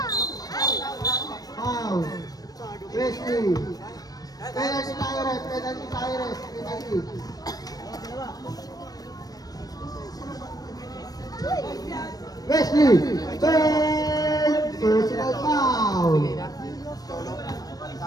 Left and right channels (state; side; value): late; right; 0.18 ms